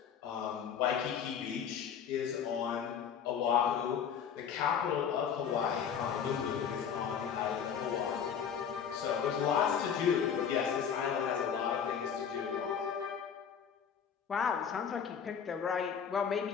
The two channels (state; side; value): quieter; right; 7.6 dB